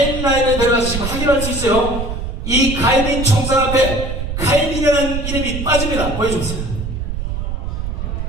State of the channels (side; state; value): right; noise; rumble, 4 dB below the sound